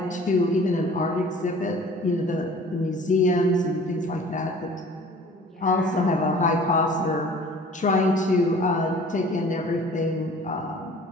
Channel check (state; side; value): normal; both; correlation 0.48